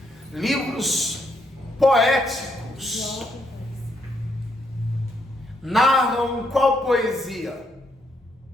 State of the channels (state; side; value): normal; both; correlation 0.75